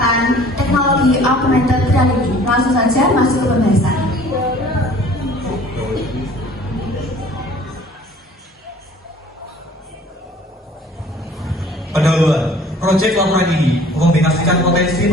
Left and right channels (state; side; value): normal; both; correlation 0.51